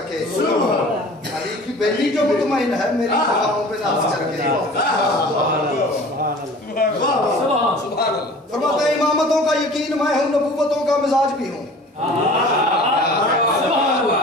کے, علی کی بیٹی جو مطمئن ہے میری وفاؤں پہ ناز کر کے. فرماتے ہیں امامتوں کا یقین میں ہوں, نبوتوں کا مزاج بھی ہوں.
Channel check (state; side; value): normal; both; correlation 0.44